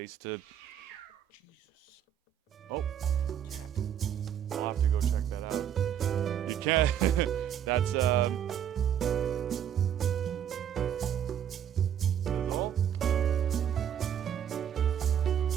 to. Jesus. Oh, cat. I'll have to go check that out. You can't. That's Oh.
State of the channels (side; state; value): left; quieter; 9.5 dB